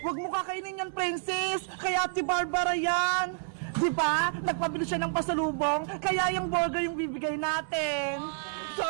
mo kakainin yan, Princess. Kaya Ate Barbara yan. Di ba? Nagpabili siya ng pasalubong, kaya yung burger yung bibigay natin.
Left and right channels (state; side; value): silent; left; 58 dB below the other